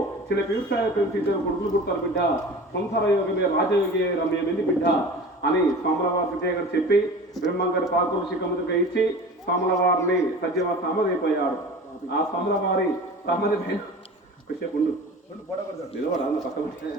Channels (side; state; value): both; normal; correlation 0.38